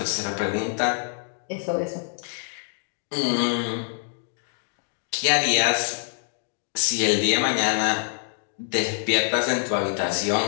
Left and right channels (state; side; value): silent; right; digital silence